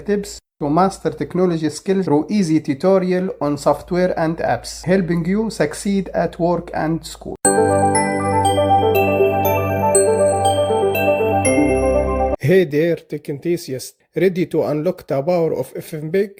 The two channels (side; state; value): both; identical; correlation 1.00